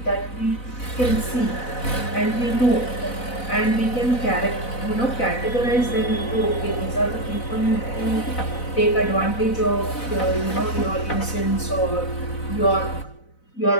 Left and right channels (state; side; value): late; right; 4.0 ms